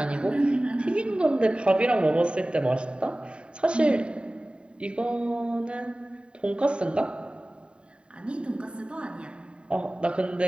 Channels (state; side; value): late; left; 0.054 ms